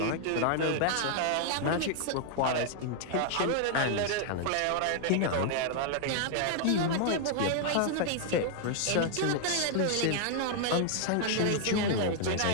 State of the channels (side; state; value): both; different; correlation 0.00